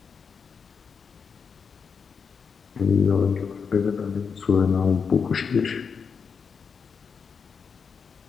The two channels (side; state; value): right; quieter; 5.9 dB